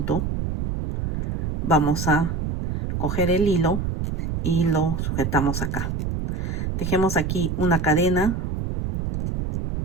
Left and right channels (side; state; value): right; noise; rumble, 2 dB below the sound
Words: vamos a coger el hilo y lo sujetamos acá. Tejemos aquí una cadena